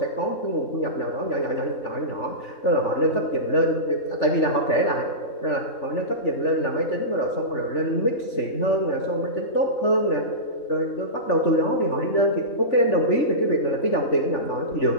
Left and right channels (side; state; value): right; late; 3.5 ms